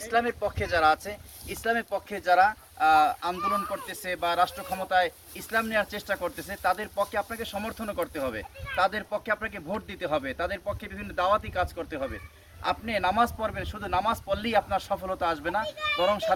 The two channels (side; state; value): both; identical; correlation 1.00